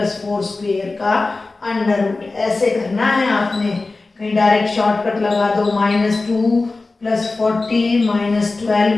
स्क्वेयर का अंडर रूट। ऐसे करना है आपने, कहीं डायरेक्ट शॉर्टकट लगा दो, -2 +40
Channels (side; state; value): right; quieter; 3.5 dB